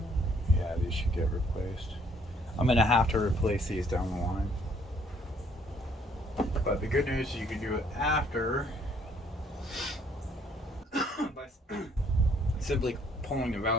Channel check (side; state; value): both; normal; correlation 0.64